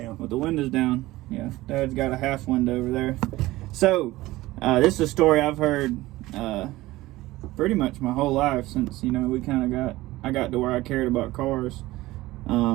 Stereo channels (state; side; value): quieter; left; 18.0 dB